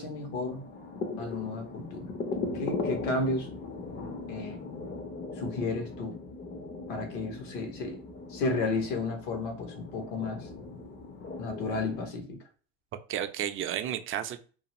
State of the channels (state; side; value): normal; both; correlation 0.19